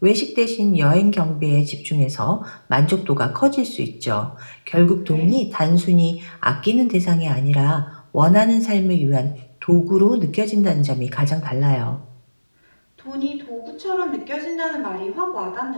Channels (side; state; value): both; inverted; correlation -1.00